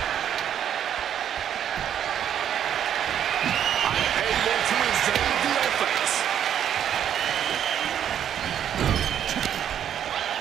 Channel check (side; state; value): left; quieter; 9.6 dB